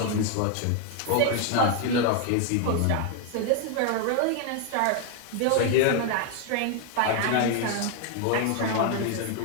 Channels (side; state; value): both; different; correlation 0.01